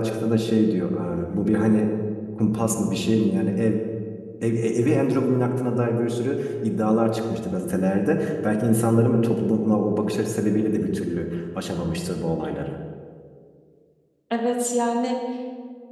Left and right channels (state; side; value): identical; both; correlation 1.00